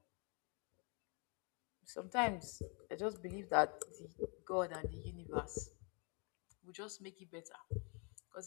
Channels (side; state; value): right; quieter; 35.1 dB